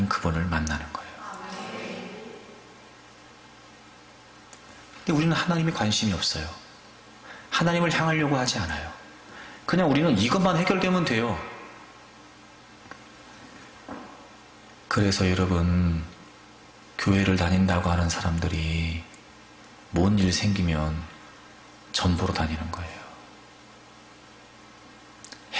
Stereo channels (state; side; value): identical; both; correlation 1.00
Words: 그분을 만나는 거예요. 근데 우리는 하나님에 관심이 없어요. 하나님을 향하려고 하지 않아요. 그냥 우리는 이것만 해결되면 돼요. 그래서 여러분, 교회를 다닌다고 하는 사람들이 뭔 일 생기면 전보로 다니는 거예요.